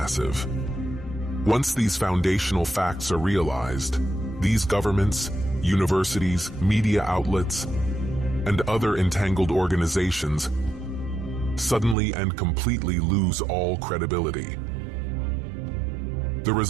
Once these foundational facts are realized, these governments, universities, media outlets, and other entangled organizations suddenly and completely lose all credibility. The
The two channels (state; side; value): drops out; left; at 12.0 s